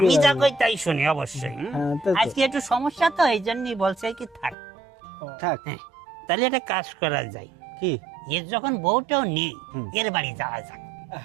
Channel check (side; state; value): left; drops out; at 4.5 s